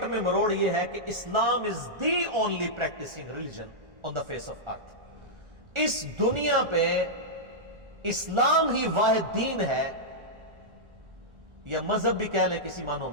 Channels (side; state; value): left; late; 1.4 ms